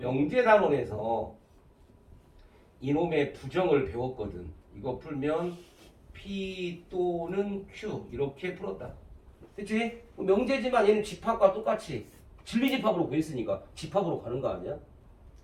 이놈의 부정을 배웠거든. 이거 풀면 P 또는 Q 이렇게 풀었다. 그치? 명제지만 얘는 집합과 똑같이 진리집합으로 구했으니까 집합으로 가는 거 아니야?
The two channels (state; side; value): identical; both; correlation 1.00